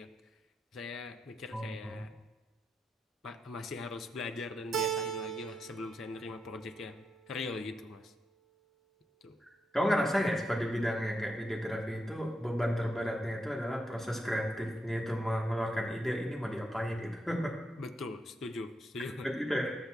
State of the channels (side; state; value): both; normal; correlation 0.84